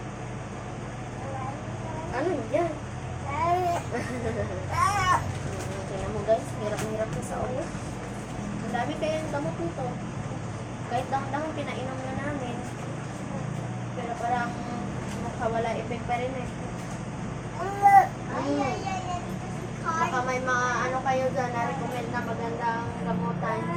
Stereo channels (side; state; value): both; identical; correlation 1.00